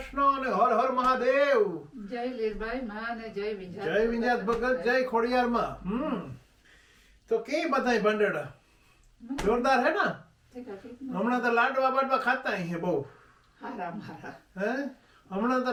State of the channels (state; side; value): identical; both; correlation 1.00